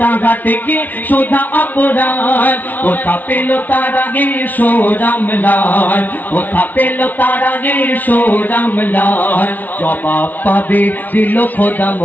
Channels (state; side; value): late; right; 0.080 ms